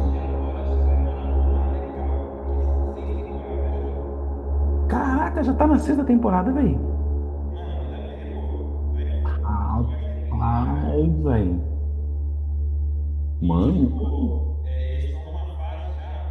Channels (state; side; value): identical; both; correlation 1.00